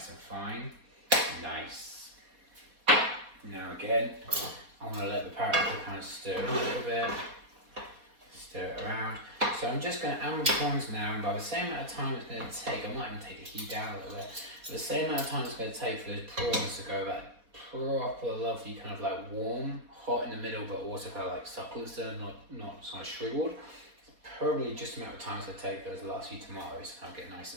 and fine. Nice. Now again, I'm going to let the paprika kind of stir a little bit. Stir it around. So I'm just going to add my prawns now, and by the same amount of time it's going to take, I might even take the heat down a little bit, but the same amount of time it's going to take for those prawns to go that proper lovely kind of like warm, hot in the middle, but also kind of like succulent, so not kind of shriveled. Probably just the amount of time it's going to take for those last few tomatoes to kind of get nice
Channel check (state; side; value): late; left; 4.2 ms